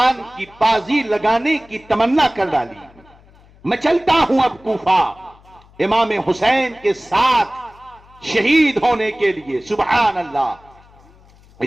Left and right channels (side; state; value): left; noise; hum, 27 dB below the sound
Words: کی بازی لگانے کی تمنا کر ڈالی۔ میں چلتا ہوں اب کوفہ امام حسین کے ساتھ شہید ہونے کے لیے۔ سبحان اللہ۔